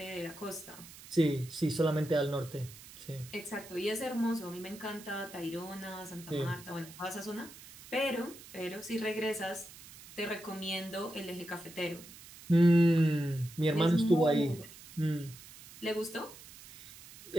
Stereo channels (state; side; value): noise; right; hiss, 18 dB below the sound